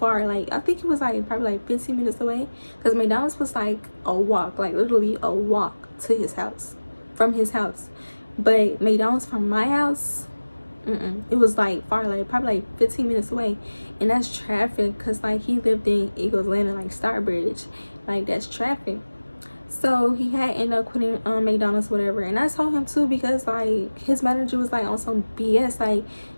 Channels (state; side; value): inverted; both; correlation -1.00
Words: Like, I think it was like probably like 15 minutes away, because McDonald's was like a walk, like literally a walk to his house, from his house. But McDonald's from my house, it was like far, like probably like 15 minutes away. And that's traffic, because like he lived in Eagles Landing, like Starbridge, like that's traffic. So he had ended up quitting McDonald's, whatever. And I told him too, because like his manager was like on some BS. Like